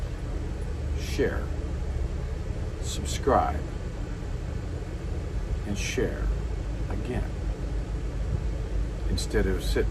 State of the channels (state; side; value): identical; both; correlation 1.00